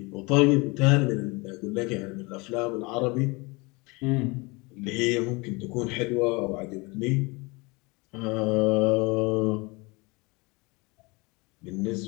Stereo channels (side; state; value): right; quieter; 26.5 dB